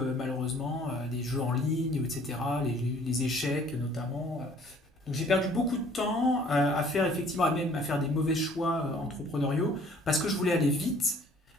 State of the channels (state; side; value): normal; both; correlation 0.56